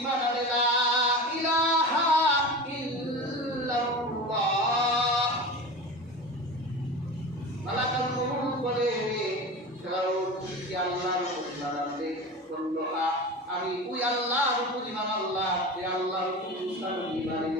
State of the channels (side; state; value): both; normal; correlation 0.30